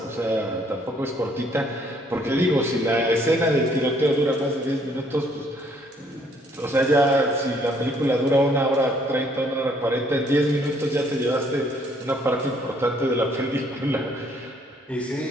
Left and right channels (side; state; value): both; normal; correlation 0.65